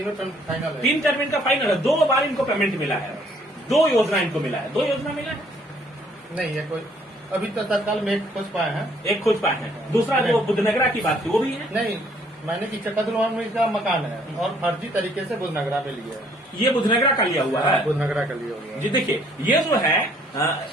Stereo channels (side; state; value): both; normal; correlation 0.63